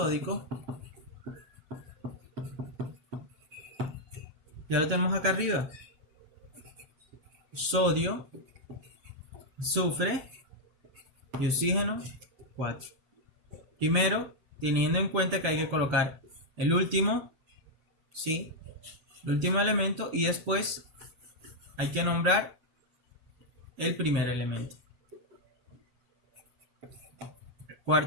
Ya lo tenemos acá arriba. Sodio, azufre y oxígeno 4. Primero, teniendo en cuenta que hay que colocar el último, ¿sí? El último elemento, y después hay que nombrar el primer elemento.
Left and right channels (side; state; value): left; late; 7.3 ms